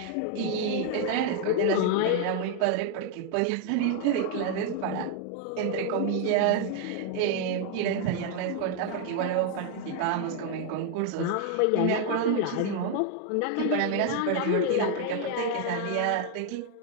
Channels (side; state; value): both; different; correlation 0.00